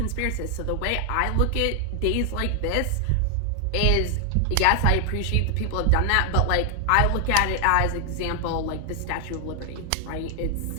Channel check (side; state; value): both; different; correlation 0.00